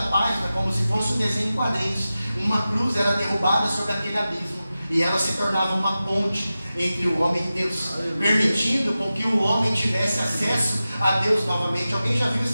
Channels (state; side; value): inverted; both; correlation -0.94